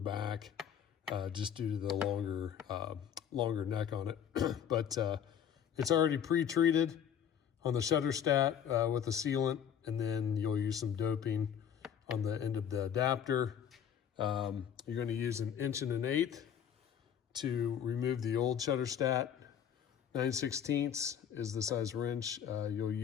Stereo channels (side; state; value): right; quieter; 8.7 dB